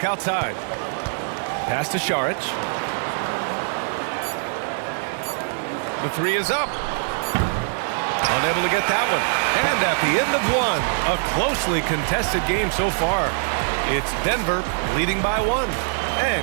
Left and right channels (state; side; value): silent; left; 57 dB below the other